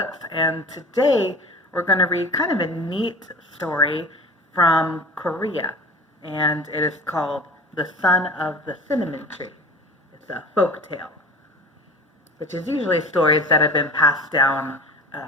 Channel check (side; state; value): both; normal; correlation 0.38